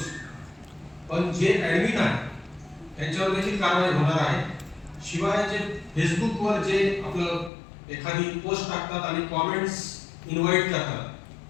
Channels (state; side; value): drops out; right; at 7.5 s